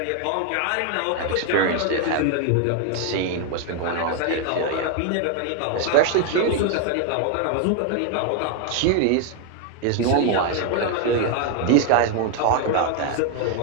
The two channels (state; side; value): different; both; correlation 0.01